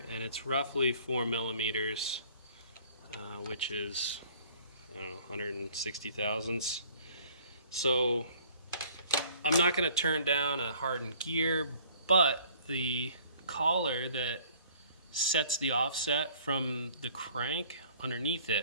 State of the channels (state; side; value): inverted; both; correlation -0.55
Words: and it's roughly 4 millimeters, which is, I don't know, 160 thousandths. So I'm not going to turn down a hardened gear, but the collar that sets the offset from the crank underneath